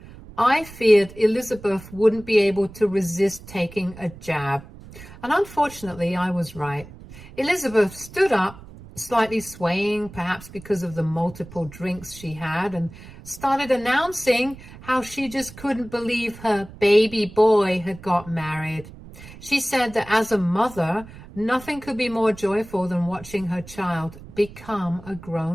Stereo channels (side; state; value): right; noise; rumble, 17 dB below the sound